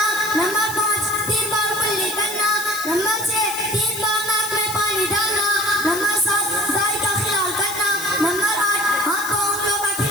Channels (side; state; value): left; noise; hiss, 8 dB below the sound